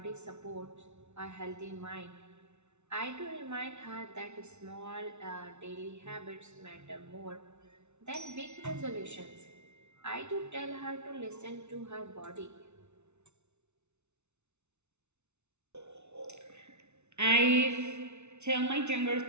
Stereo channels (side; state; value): left; late; 0.82 ms